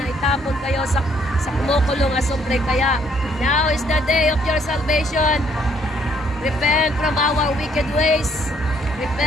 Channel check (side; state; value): both; normal; correlation 0.67